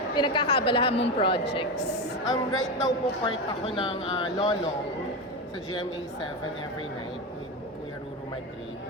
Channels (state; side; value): normal; both; correlation 0.17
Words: pinagkakaabalahan mong projects? Right now po part ako ng Lolong sa GMA 7 every night with Kuya Ruru Madrid.